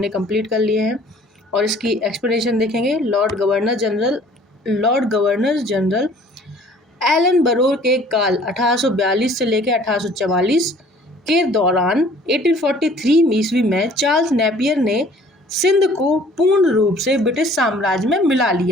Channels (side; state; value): both; normal; correlation 0.53